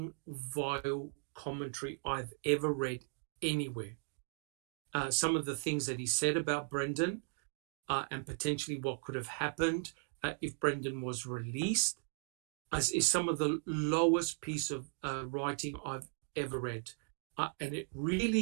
vile commentary I've ever read anywhere. Some of the things that he said about Brendan and potentially what could have happened if Brendan was released is some of the lowest piece of writing I've ever read. And it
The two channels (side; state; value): left; silent; 53 dB below the other